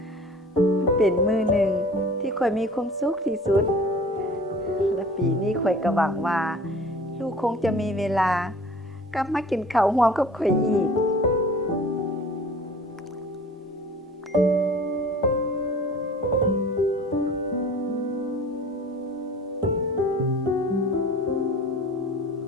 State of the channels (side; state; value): both; normal; correlation 0.45